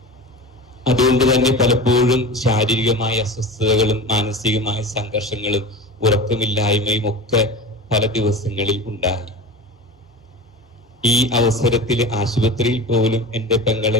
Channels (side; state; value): both; normal; correlation 0.31